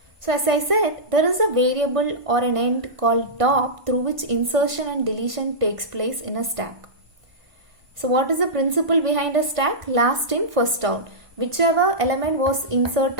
So as I said, there is a variable or an end called top through which insertion and deletion takes place in a stack. So what is the principle behind a stack? Last in, first out. Whichever element was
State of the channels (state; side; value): late; left; 1.5 ms